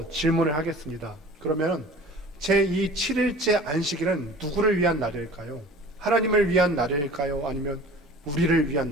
질문을 하겠습니다. 그러면 제 이 7일째 안식일은 누구를 위한 날일까요? 하나님을 위한 날일까요? 아니면 우리를 위한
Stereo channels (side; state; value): both; normal; correlation 0.44